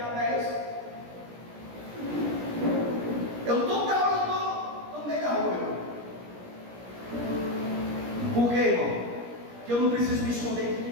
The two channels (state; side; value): late; left; 17 ms